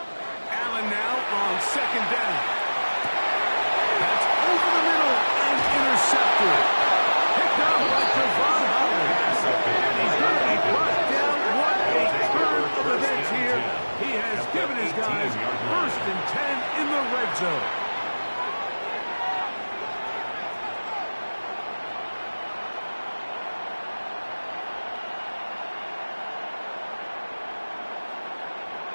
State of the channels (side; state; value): both; inverted; correlation -1.00